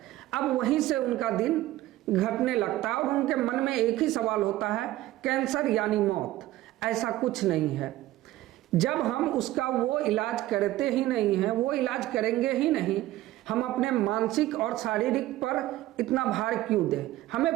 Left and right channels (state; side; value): quieter; left; 15.7 dB